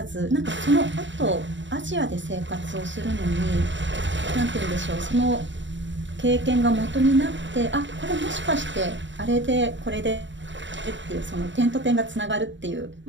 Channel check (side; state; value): left; late; 0.54 ms